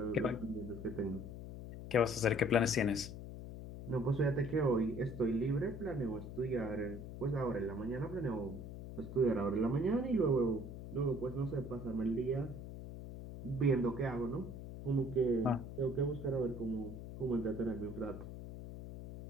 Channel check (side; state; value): left; noise; hum, 10 dB below the sound